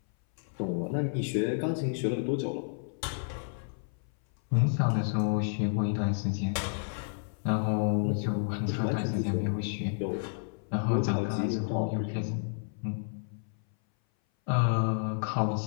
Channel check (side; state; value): right; silent; 57 dB below the other